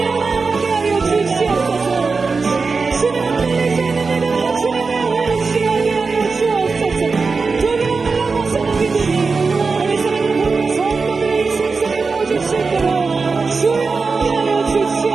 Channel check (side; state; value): left; quieter; 4.5 dB